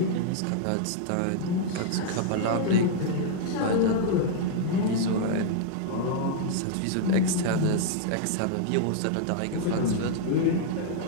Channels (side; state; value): both; different; correlation -0.01